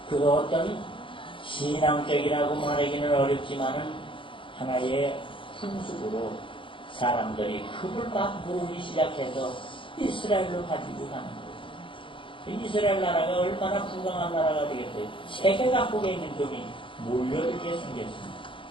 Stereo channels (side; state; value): right; late; 0.25 ms